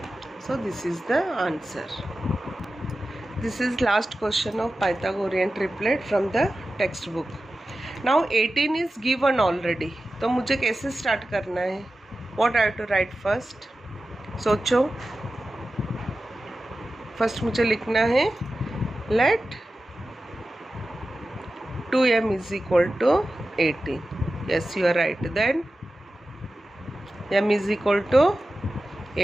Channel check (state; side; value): normal; both; correlation 0.94